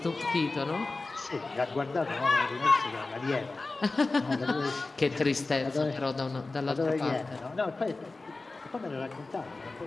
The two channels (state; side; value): quieter; right; 3.4 dB